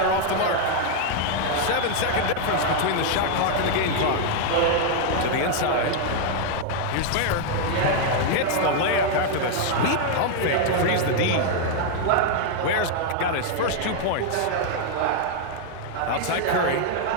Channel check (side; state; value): both; different; correlation 0.00